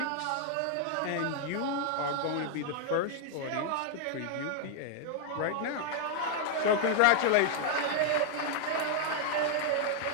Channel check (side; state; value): both; different; correlation -0.01